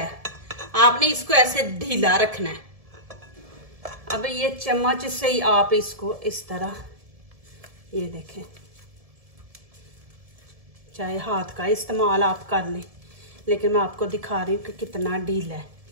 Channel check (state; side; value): late; left; 1.7 ms